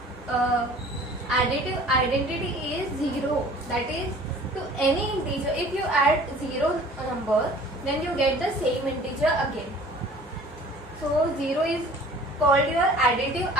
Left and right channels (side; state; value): both; normal; correlation 0.48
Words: additive identity is 0. That is, to any integer, if you add 0 number, then you get the same integer again. So 0 is called your additive